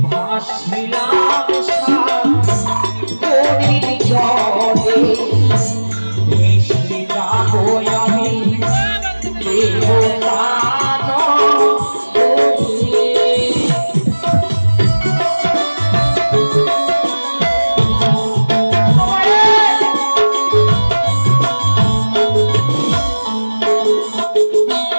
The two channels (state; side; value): inverted; both; correlation -1.00